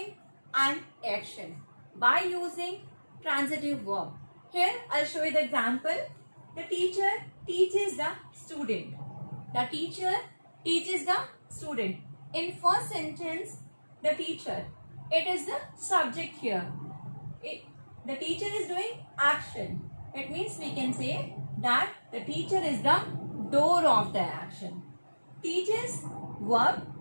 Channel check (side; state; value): both; inverted; correlation -1.00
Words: an action by using transitive verb. Here I'll show you the example. The teacher teaches the student. The teacher teaches the student. In first sentence, the teacher, it is the subject here. The teacher is doing action. It means we can say that the teacher is the door of the action. Teaches verb